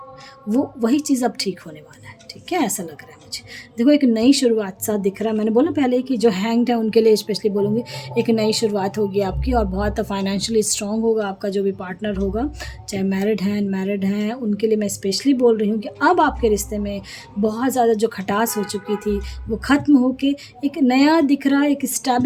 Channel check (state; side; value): identical; both; correlation 1.00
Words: वो वही चीज़ अब ठीक होने वाला है, ठीक है, ऐसा लग रहा है मुझे। देखो एक नई शुरुआत सा दिख रहा है। मैंने बोला पहले कि जो हैंग्ड है उनके लिए स्पेशली बोलूँगी एक नई शुरुआत होगी आपकी, और बहुत फाइनेंशियली स्ट्रॉन्ग होगा आपका जो भी पार्टनर होगा, चाहे मैरिड हैं अनमैरिड हैं, उनके लिए मैं स्पेशली बोल रही हूँ कि अब आपके रिश्ते में बहुत ज़्यादा जो खटास हो चुकी थी वो ख़त्म होके एक नया दिख रहा है, एक